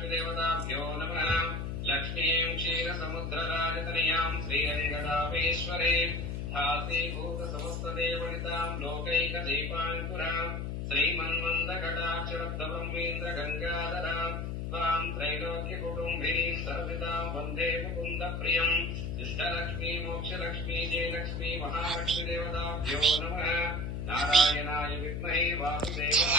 దేవతాభ్యో నమః. లక్ష్మీం క్షీర సముద్రరాజత जगदामेश्वरे धाते भूतसमस्तदेवनितां लोकैकदीपाङ्कुरां श्रीमन्मन्दकटाक्षरब्धब्रह्मेन्द्र गङ्गाधरां त्वां त्रैलोक्यकुटुम्बिनीं सर्वदां वन्दे मुकुन्दप्रियम् इष्टलक्ष्मी मोक्षलक्ष्मी जयलक्ष्मी महालक्ष्मीदेवताभ्यो नमः। नारायणाय विद्महे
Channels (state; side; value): noise; left; hum, 3 dB below the sound